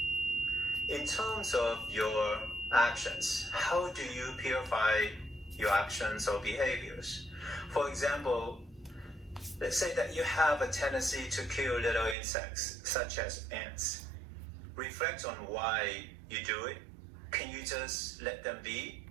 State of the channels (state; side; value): drops out; left; at 12.2 s